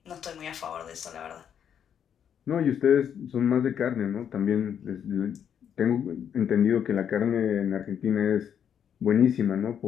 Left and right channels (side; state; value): right; quieter; 8.5 dB